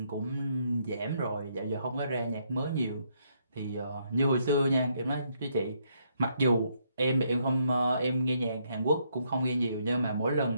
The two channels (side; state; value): both; inverted; correlation -0.73